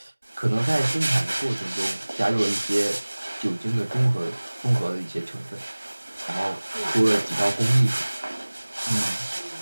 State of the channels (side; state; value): both; inverted; correlation -1.00